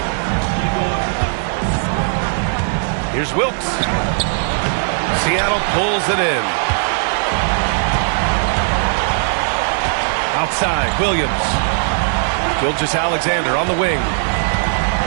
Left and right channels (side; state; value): left; silent; 67 dB below the other